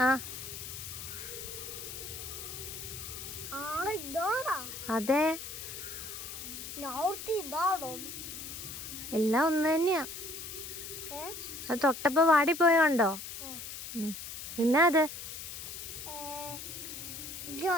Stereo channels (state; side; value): noise; left; hiss, 9 dB below the sound